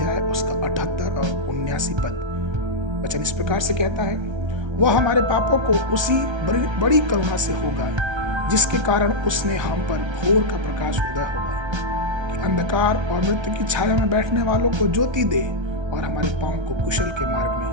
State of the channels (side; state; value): left; late; 1.3 ms